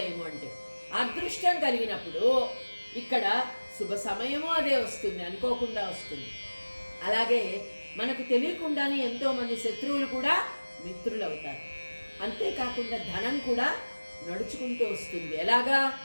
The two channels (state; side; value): inverted; both; correlation -1.00